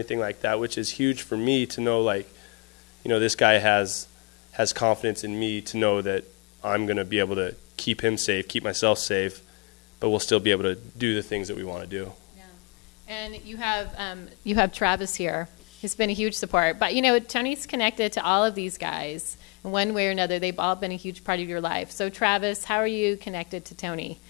like that, which is huge for me to know, like, this guy has confidence in me to know that I'm going to be able to keep him safe, keep myself safe, but we'll still be able to do the things that we want to do. Yeah. And you have Travis here. He's been a huge support. But, Tony's connected to all of these guys. In one way or another, they've all been a huge part of your life. So, Travis, how are you connected to Tony?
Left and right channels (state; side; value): quieter; right; 29.8 dB